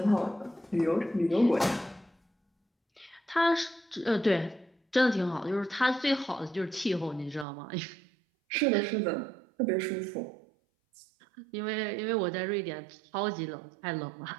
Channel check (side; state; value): left; drops out; at 7.5 s